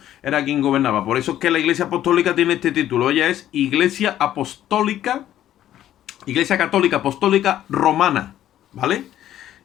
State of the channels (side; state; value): right; quieter; 12.1 dB